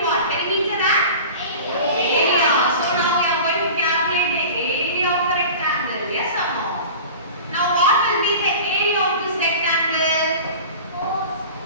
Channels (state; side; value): inverted; both; correlation -0.37